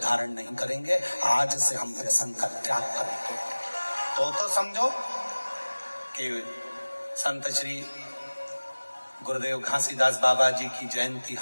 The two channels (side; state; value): both; inverted; correlation -1.00